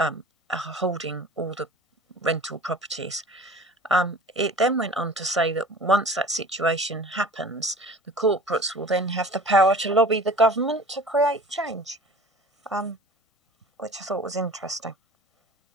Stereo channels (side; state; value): both; normal; correlation 0.43